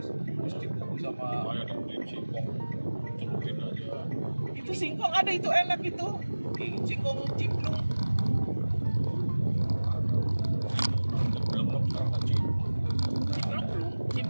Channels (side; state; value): both; inverted; correlation -1.00